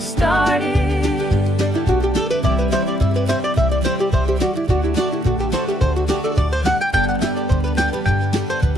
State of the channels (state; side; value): normal; both; correlation 0.73